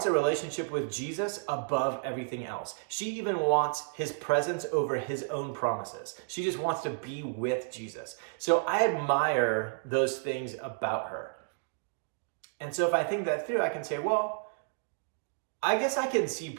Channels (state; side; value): silent; left; digital silence